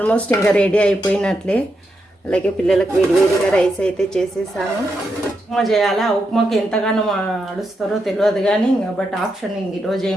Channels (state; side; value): normal; both; correlation 0.84